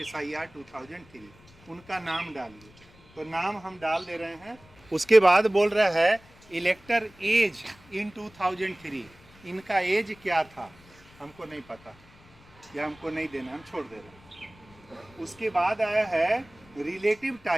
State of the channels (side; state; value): left; noise; rumble, 26 dB below the sound